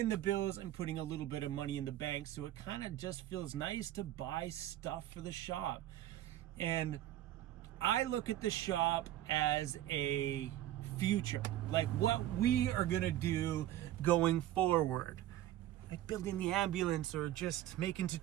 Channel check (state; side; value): quieter; left; 13.5 dB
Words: the bills and putting a little bit of money in the bank, so it kind of just feels nice to buy stuff for the shop. And I look at the shop as a future, like what we are gonna do going forward, like building the ambulance or just making